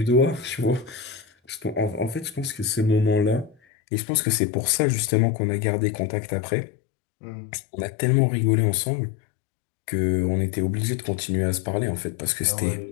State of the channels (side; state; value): right; drops out; at 3.6 s